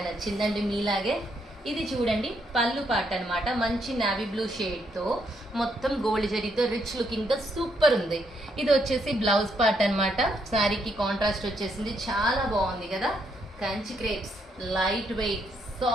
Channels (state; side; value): normal; both; correlation 0.75